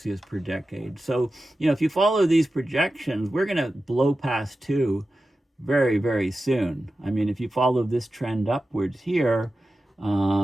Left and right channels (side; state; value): both; normal; correlation 0.93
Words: per decade. So, if you follow these projections, we're going to blow past 2 very, very soon. I mean, if you follow this trend upwards here,